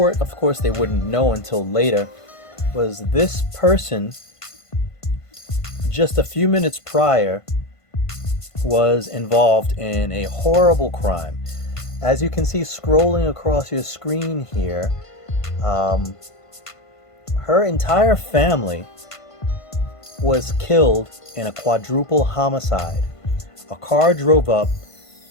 of course they wouldn't know until later, was this person just a few minutes prior was involved in a horrible crime. As you can see scrolling across your screen here, her entire family was killed in a quadruple homicide. A car drove up,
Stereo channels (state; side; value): late; right; 1.5 ms